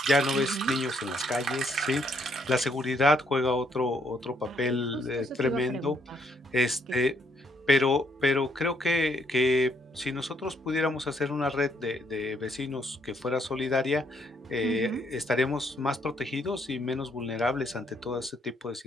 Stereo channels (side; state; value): both; normal; correlation 0.70